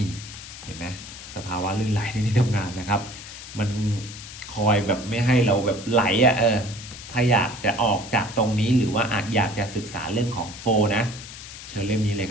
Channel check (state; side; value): noise; left; hiss, 13 dB below the sound